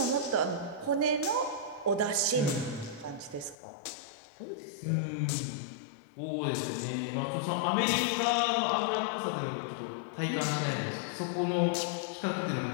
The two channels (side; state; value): right; drops out; at 3.6 s